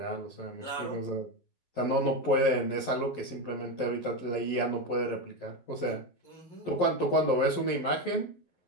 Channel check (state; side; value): late; right; 11 ms